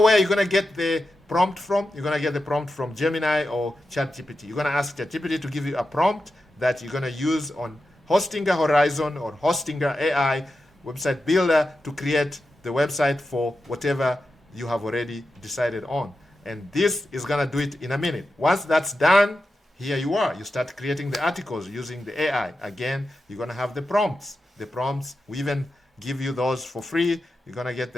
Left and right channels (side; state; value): both; normal; correlation 0.90